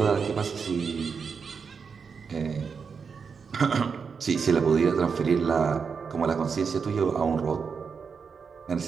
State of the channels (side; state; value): left; quieter; 5.8 dB